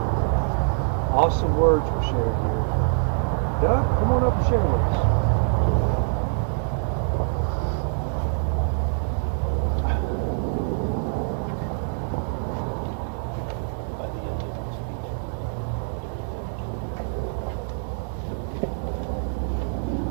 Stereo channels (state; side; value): silent; left; digital silence